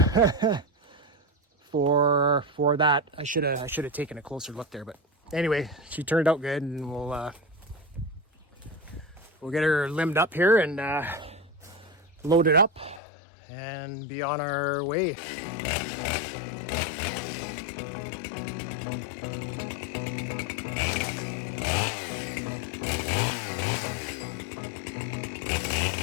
for that. I should have taken a closer look there, but anyway, she turned out good, and we'll get her limbed up here and load it up and be on our way.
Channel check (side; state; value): right; drops out; at 13.0 s